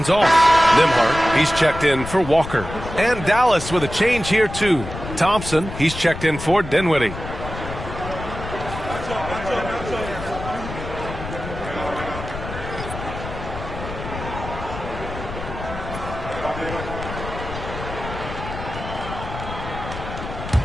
off. Nembhard, he's checked in for Walker. And Dallas with a change here, too. Thompson, he's checked in for Dinwiddie.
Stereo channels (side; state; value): left; noise; rumble, 9 dB below the sound